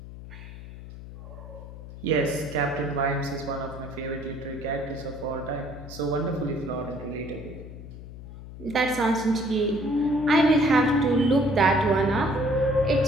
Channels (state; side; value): noise; left; hum, 14 dB below the sound